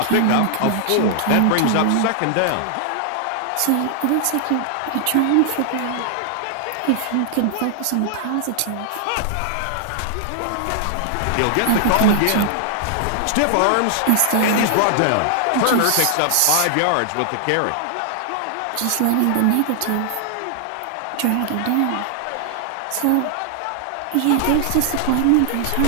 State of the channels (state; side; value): different; both; correlation 0.00